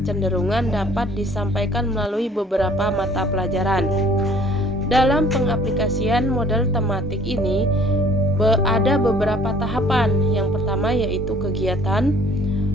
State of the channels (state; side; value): normal; both; correlation 0.55